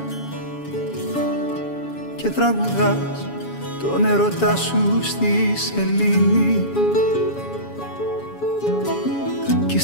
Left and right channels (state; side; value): late; right; 7.1 ms